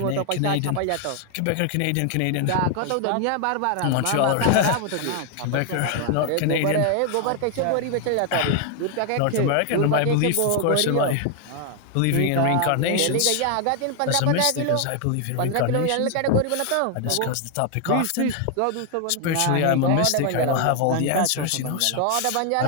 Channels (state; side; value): different; both; correlation 0.01